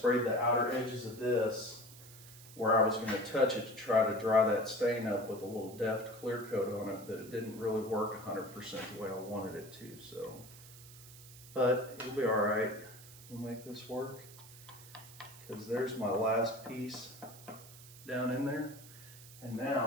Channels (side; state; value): right; noise; hiss, 18 dB below the sound